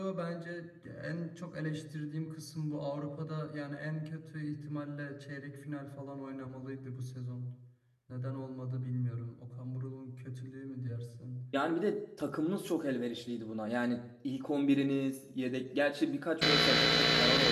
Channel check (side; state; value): both; identical; correlation 1.00